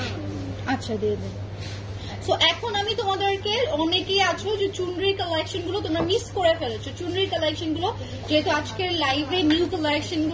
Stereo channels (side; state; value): both; identical; correlation 1.00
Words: আচ্ছা দিয়ে দেন। সো এখন আমি তোমাদেরকে, অনেকেই আছো যে চুনরির কালেকশন গুলো তোমরা মিস করে ফেলেছো, চুনরির কালেকশন গুলো যেহেতু আজকের লাইভে নিউ কালেকশন